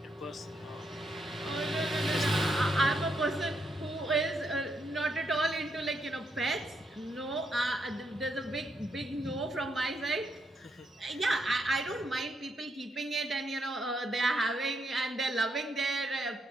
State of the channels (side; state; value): both; normal; correlation 0.78